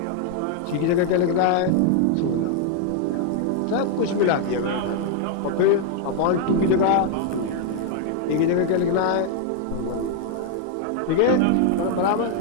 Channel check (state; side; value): different; both; correlation 0.00